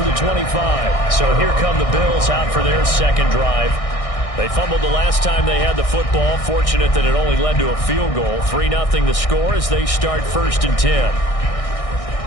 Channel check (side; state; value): right; late; 1.6 ms